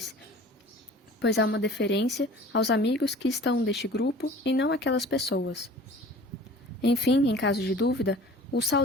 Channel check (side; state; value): both; normal; correlation 0.45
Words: pois há uma deferência aos amigos que estão deste grupo e não aquelas pessoas. Enfim, em caso de dúvida, o